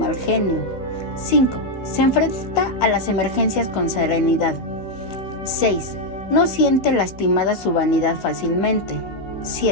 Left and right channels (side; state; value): right; late; 16 ms